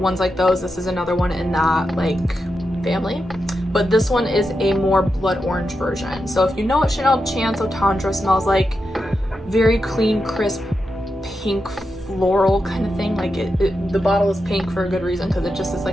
like those. This is another one in that like family, but this one is a more blood orange version. So if you know what Chanel Chance Eau Tendre smells like, very clean, crisp, pink floral kind of thing. Like the bottle is pink for a good reason, because it just is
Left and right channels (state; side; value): normal; both; correlation 0.88